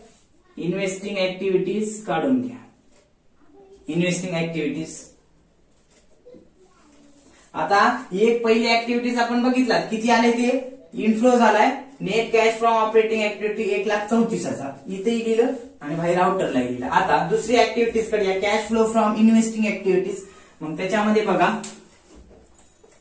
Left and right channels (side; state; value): both; identical; correlation 1.00